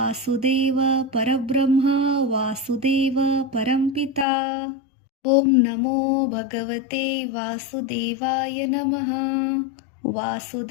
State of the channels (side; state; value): right; drops out; at 4.2 s